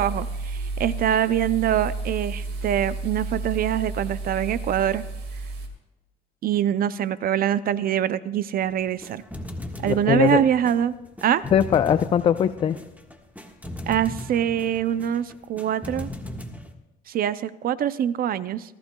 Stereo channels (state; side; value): quieter; left; 3.9 dB